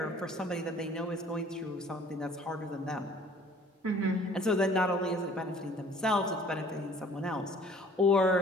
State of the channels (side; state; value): both; normal; correlation 0.53